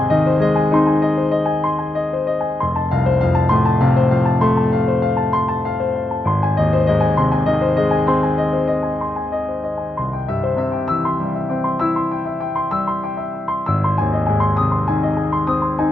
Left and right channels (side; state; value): both; normal; correlation 0.86